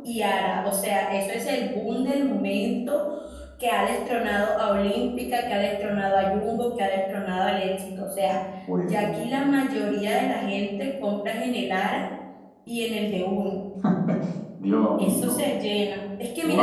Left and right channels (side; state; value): both; identical; correlation 1.00